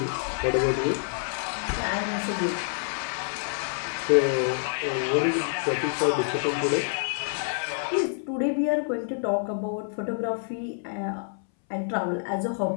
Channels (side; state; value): right; silent; 60 dB below the other